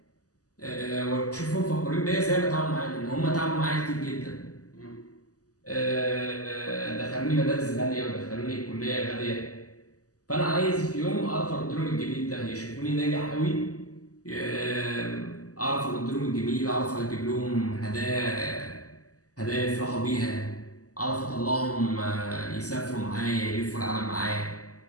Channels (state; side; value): late; right; 0.67 ms